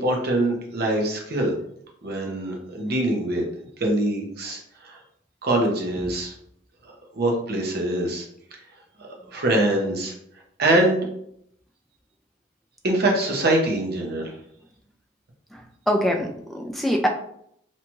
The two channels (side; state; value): both; normal; correlation 0.49